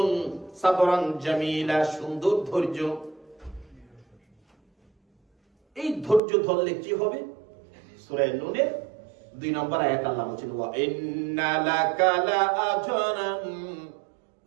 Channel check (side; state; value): left; drops out; at 6.2 s